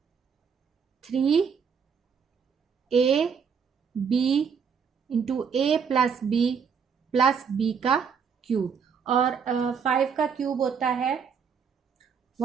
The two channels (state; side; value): quieter; left; 6.5 dB